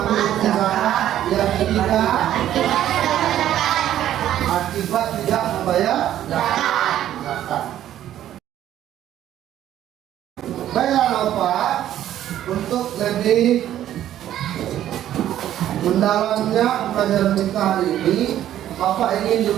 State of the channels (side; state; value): left; quieter; 11.9 dB